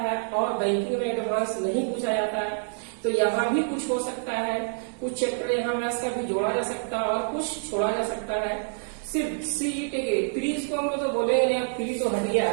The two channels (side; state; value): left; silent; digital silence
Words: और बैंकिंग में एडवांस नहीं पूछा जाता है। तो यहाँ भी कुछ हो सकता है, कुछ चैप्टर यहाँ मैथ्स का भी जोड़ा जा सकता है और कुछ छोड़ा जा सकता है। सिर्फ सीईटी के प्रीज को हम लोग तो बोलेंगे नहीं, प्री तो हट गया